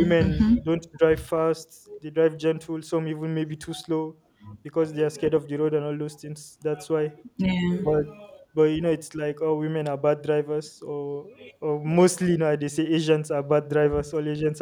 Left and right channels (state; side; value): identical; both; correlation 1.00